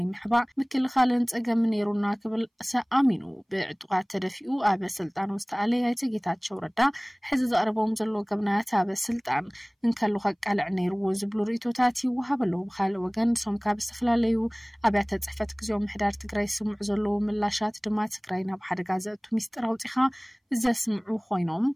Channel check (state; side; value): identical; both; correlation 1.00